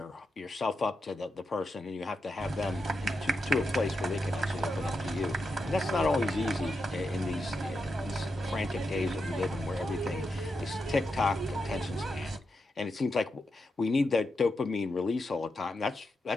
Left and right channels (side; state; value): both; normal; correlation 0.86